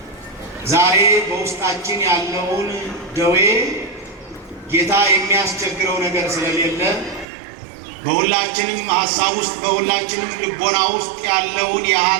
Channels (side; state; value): left; drops out; at 7.2 s